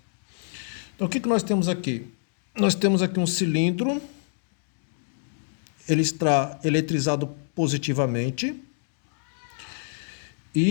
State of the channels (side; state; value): right; silent; digital silence